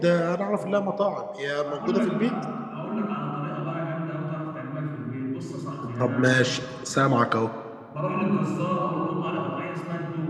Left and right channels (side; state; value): both; identical; correlation 1.00